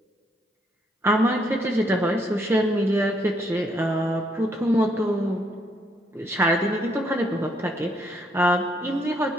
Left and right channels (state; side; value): normal; both; correlation 0.72